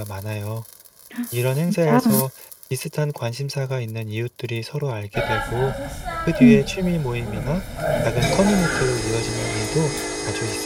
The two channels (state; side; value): identical; both; correlation 1.00